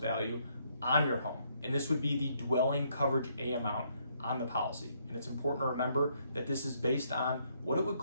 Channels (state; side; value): inverted; both; correlation -0.71